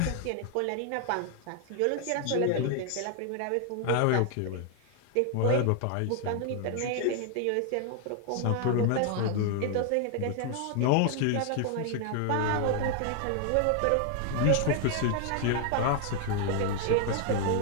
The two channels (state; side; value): different; both; correlation 0.00